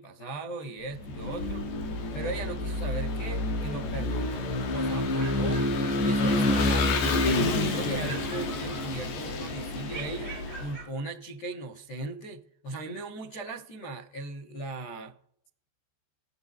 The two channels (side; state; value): right; late; 14 ms